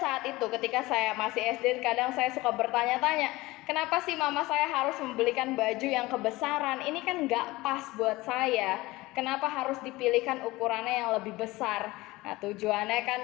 itu ketika saya masih SD, kadang saya suka bertanya-tanya, kenapa sih mama saya harus membelikan baju yang kebesaran? Ini kan nggak pas buat saya. Kenapa harus dipilihkan ukurannya yang lebih besar? Nah tujuannya kan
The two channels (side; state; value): right; quieter; 20.0 dB